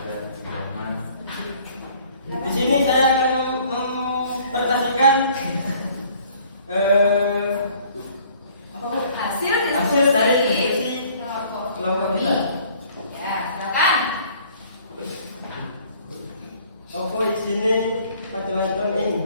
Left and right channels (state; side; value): inverted; both; correlation -0.56